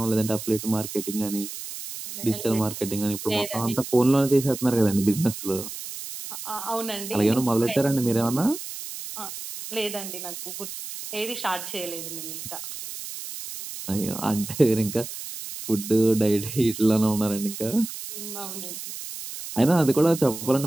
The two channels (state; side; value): noise; right; hiss, 9 dB below the sound